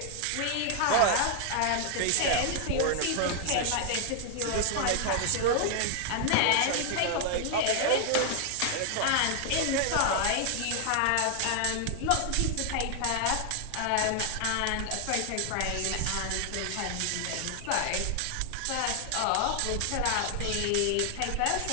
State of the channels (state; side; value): different; both; correlation 0.00